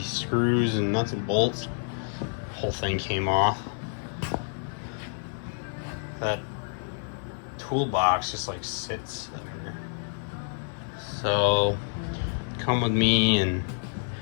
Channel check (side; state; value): right; silent; 59 dB below the other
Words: screws and nuts and bolts. Whole thing came off. That toolbox just like sits there. So come with me and